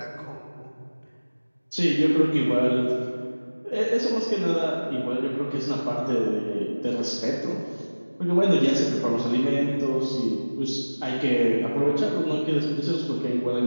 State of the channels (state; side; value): inverted; both; correlation -1.00